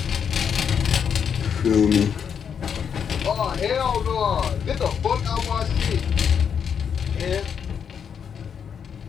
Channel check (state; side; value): quieter; right; 7.4 dB